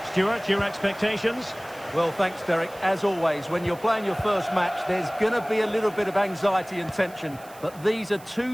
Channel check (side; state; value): right; noise; hiss, 22 dB below the sound